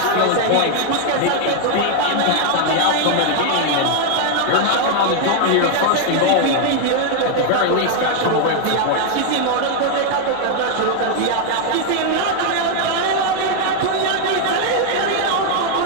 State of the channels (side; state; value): both; different; correlation 0.00